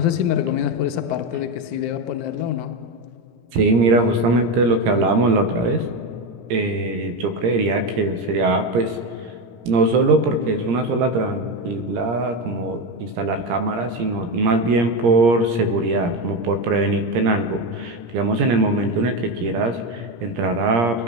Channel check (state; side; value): late; left; 17 ms